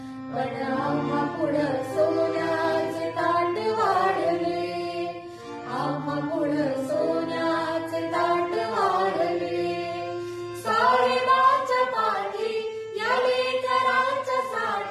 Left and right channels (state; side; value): identical; both; correlation 1.00